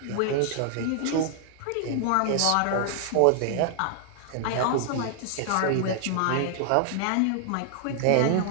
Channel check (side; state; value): both; different; correlation 0.00